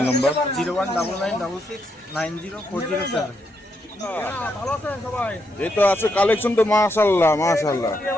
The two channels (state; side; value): normal; both; correlation 0.79